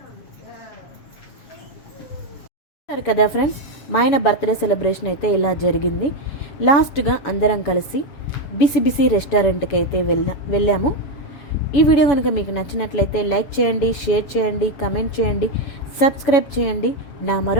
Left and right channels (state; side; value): late; right; 7.1 ms